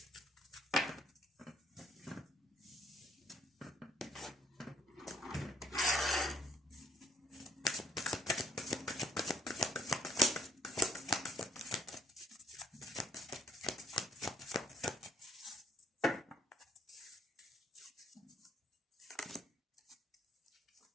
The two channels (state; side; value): normal; both; correlation 0.66